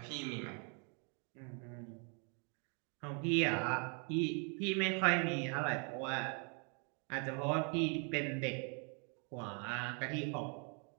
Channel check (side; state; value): left; quieter; 38.1 dB